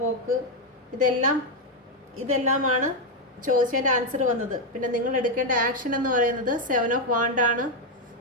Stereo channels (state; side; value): normal; both; correlation 0.04